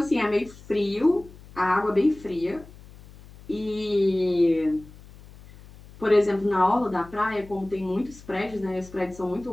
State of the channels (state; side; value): noise; left; hum, 20 dB below the sound